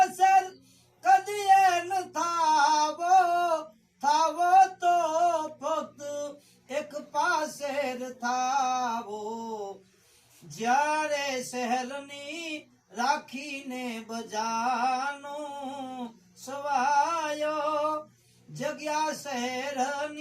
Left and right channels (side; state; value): both; identical; correlation 1.00